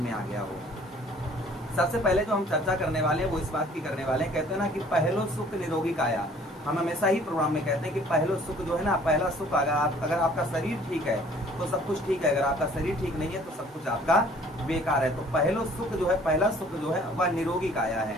आ गया हो। सबसे पहले जो हम चर्चा करने वाले हैं वो इस बात की करने वाले हैं, कहते हैं ना कि पहलो सुख निरोगी काया। हम हमेशा ही प्रोग्राम में कहते हैं कि पहलो सुख जो है ना, पहला सुख अगर आपका शरीर ठीक है तो सब कुछ ठीक है, अगर आपका शरीर ठीक नहीं है तो सब कुछ आपका बेकार है। तो पहलो सुख जो है, पहला सुख जो है वह निरोगी काया है।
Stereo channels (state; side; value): normal; both; correlation 0.55